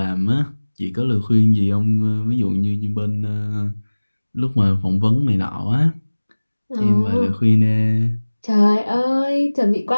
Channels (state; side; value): inverted; both; correlation -1.00